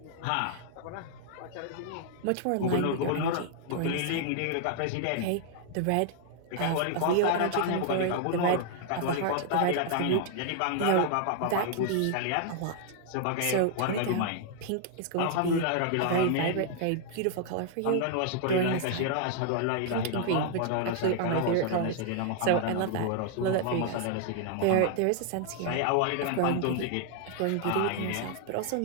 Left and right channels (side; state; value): both; different; correlation 0.00